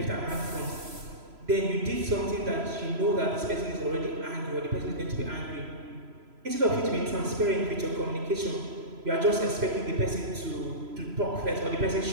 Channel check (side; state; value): left; late; 3.0 ms